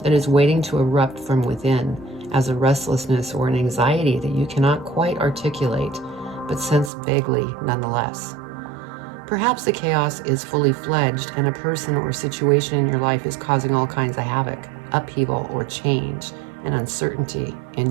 that is waiting to erupt from within, as a restlessness or an anxiety that you cannot quite articulate, but sense vaguely nonetheless. Perhaps the chaos is fully fledged and a person or situation in your life is causing all kinds of havoc, upheaval, or change and uncertainty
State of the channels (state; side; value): drops out; left; at 6.9 s